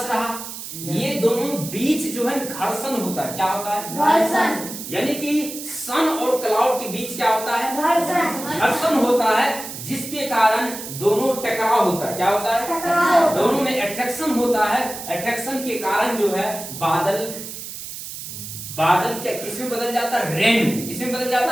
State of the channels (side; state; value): right; noise; hiss, 10 dB below the sound